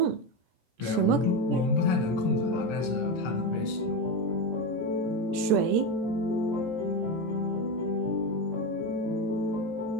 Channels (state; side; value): late; left; 17 ms